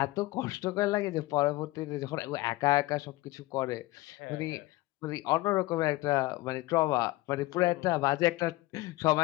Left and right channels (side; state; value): right; quieter; 19.4 dB